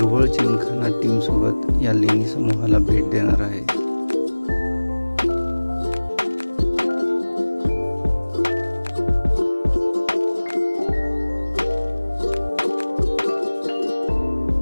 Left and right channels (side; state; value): both; inverted; correlation -1.00